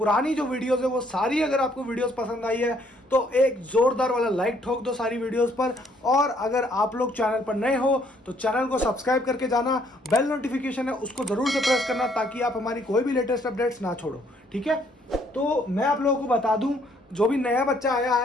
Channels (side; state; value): both; normal; correlation 0.66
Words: जो वीडियोस है वो सारी अगर आपको वीडियोस पसंद आई है तो एक जोरदार वाला लाइक ठोक दो सारी वीडियोस पर। और अगर आप लोग चैनल पर नए हो तो चैनल को सब्सक्राइब करके जाना, बेल नोटिफिकेशन है उसको जरूर से प्रेस करना ताकि आप हमारी कोई भी लेटेस्ट अपडेट्स ना छोड़ो। ठीक है, तो मैं आप लोगों को बता दूं, जो भी नया बच्चा आया